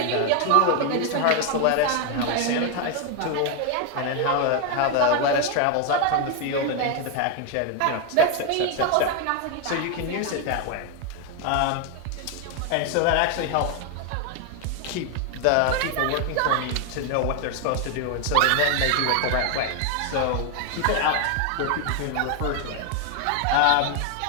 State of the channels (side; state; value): both; different; correlation 0.01